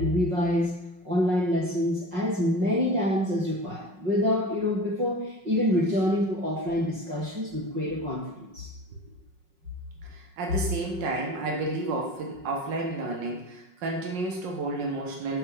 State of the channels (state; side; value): late; left; 5.5 ms